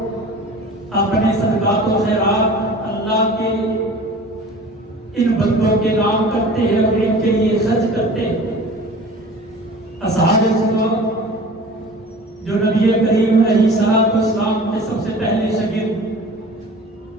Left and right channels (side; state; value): both; normal; correlation 0.41